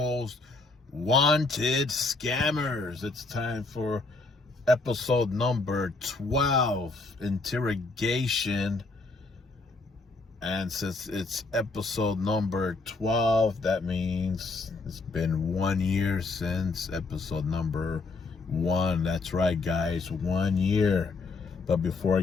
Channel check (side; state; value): right; quieter; 3.7 dB